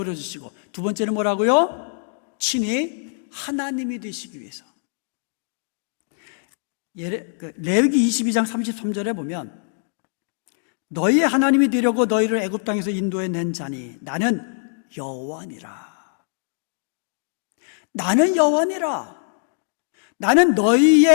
주시고, 두 번째는 뭐라고요? 친히 하나님이 되시기 위해서. 레위기 22장 33절에 보면 너희의 하나님이 되려고 너희를 애굽 땅에서 인도해 낸 자니 나는 여호와니라. 나는 여호와니라. 나는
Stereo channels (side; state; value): right; silent; 64 dB below the other